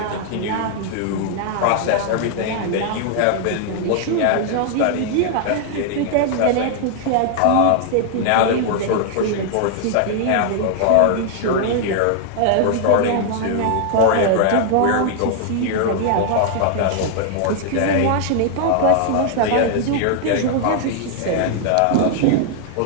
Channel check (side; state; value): both; different; correlation -0.01